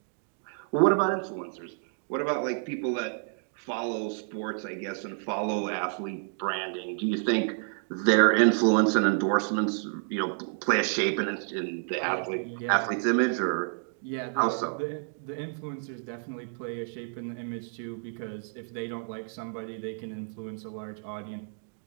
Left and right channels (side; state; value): left; silent; 58 dB below the other